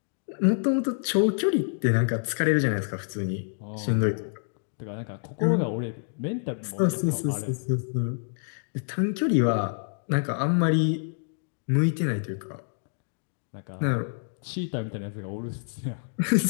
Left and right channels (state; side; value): silent; right; digital silence